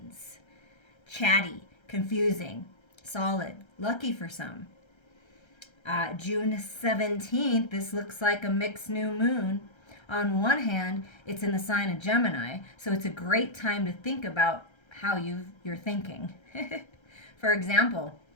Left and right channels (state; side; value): late; right; 1.3 ms